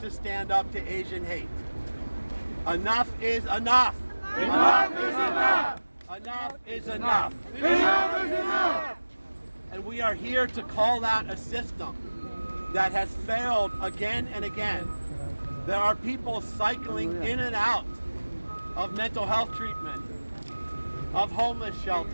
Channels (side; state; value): both; inverted; correlation -1.00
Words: stand up to Asian hate. Enough is enough. Enough is enough. Enough is enough. Enough is enough. And we are here to call out a system that has failed again and again. There are people cycling in and out of mental health treatment, of homeless